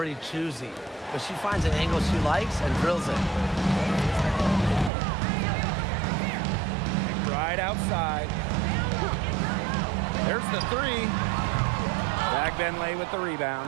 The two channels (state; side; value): drops out; left; at 4.9 s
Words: choosy, but she finds an angle she likes and drills it. Right outside. There's the three. Fagbenle with the